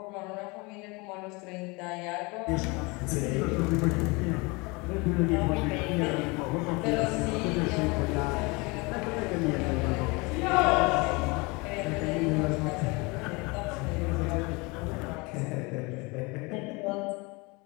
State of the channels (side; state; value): right; quieter; 26.9 dB